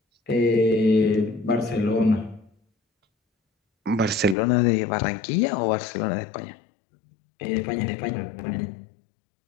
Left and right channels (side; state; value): right; drops out; at 4.4 s